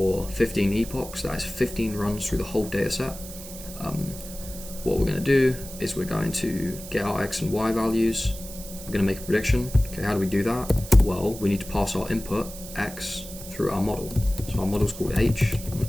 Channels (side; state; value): right; noise; hiss, 13 dB below the sound